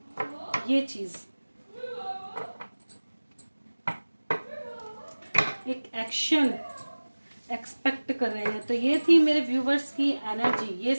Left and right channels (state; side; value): inverted; both; correlation -1.00